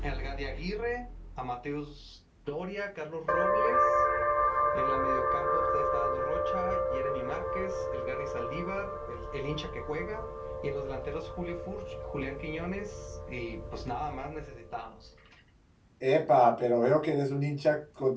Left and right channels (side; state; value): both; identical; correlation 1.00